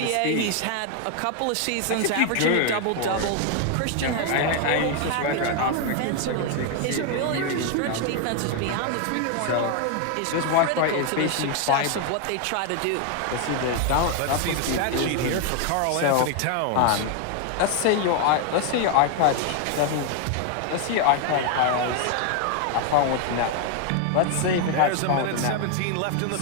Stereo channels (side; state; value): both; different; correlation 0.00